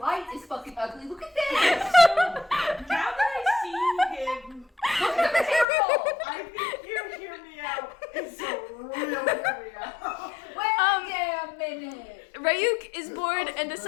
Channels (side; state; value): right; drops out; at 5.7 s